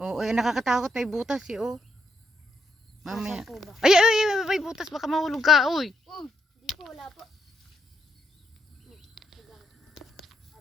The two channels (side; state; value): both; normal; correlation 0.78